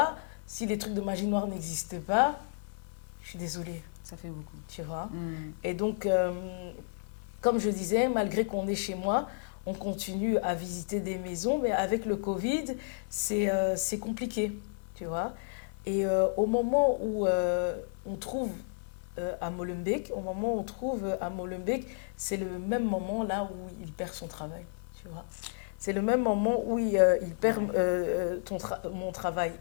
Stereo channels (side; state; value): right; silent; 56 dB below the other